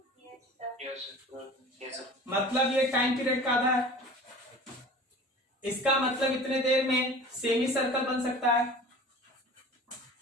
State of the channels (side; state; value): both; normal; correlation 0.41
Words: मतलब ये टाइम पीरियड का आधा है। इसका मतलब इतने देर में सेमी सर्कल बन सकता है,